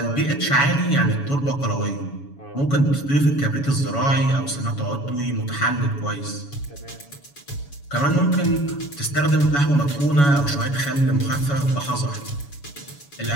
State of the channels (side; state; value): right; late; 7.1 ms